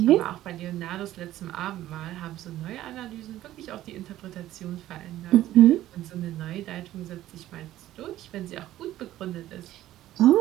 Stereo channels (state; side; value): quieter; left; 14.1 dB